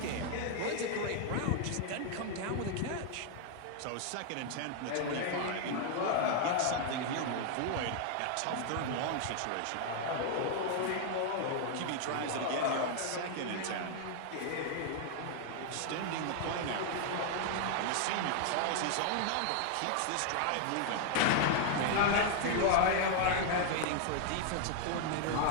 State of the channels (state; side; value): different; both; correlation 0.00